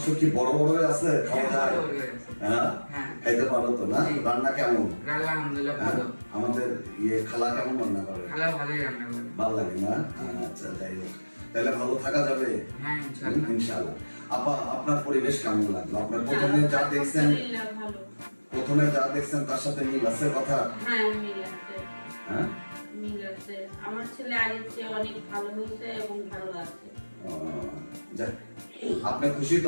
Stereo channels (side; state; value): both; inverted; correlation -1.00